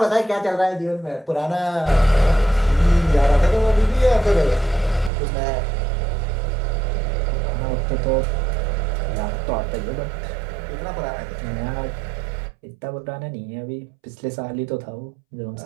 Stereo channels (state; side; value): drops out; left; at 5.1 s